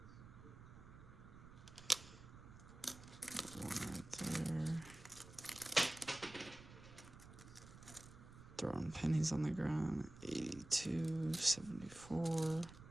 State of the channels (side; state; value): right; noise; rumble, 17 dB below the sound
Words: One right there. Throwing pennies on the ground. 82, 74.